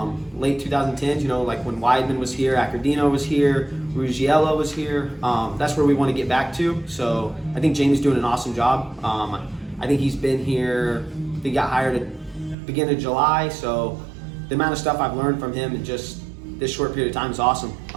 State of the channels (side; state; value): left; drops out; at 12.6 s